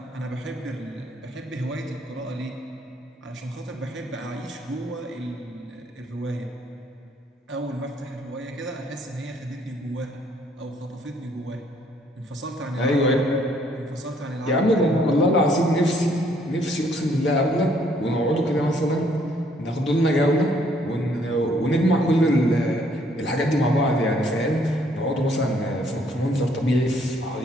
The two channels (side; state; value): both; normal; correlation 0.66